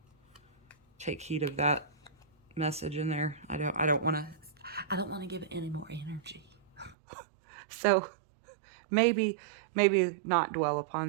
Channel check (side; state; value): left; drops out; at 7.0 s